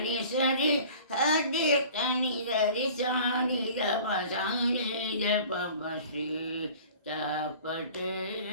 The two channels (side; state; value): both; inverted; correlation -0.45